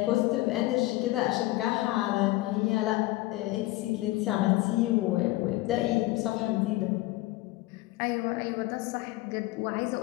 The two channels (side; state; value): right; quieter; 19.0 dB